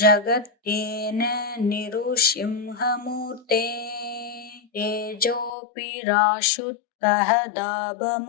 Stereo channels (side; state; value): right; drops out; at 5.5 s